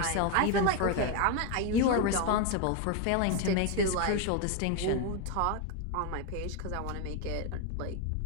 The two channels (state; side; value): different; both; correlation 0.01